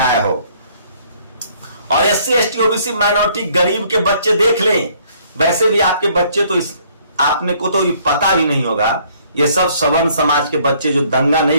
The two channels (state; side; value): inverted; both; correlation -0.62